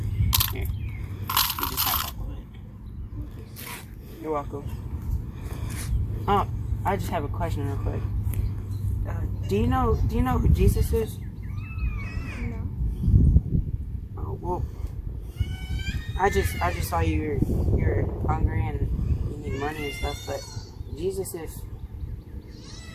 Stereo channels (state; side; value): identical; both; correlation 1.00